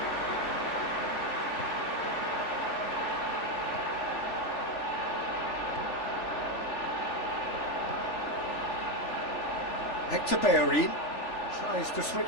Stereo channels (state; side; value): late; right; 3.4 ms